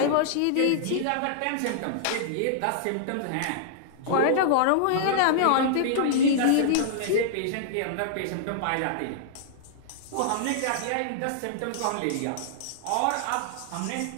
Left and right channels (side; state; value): both; different; correlation -0.01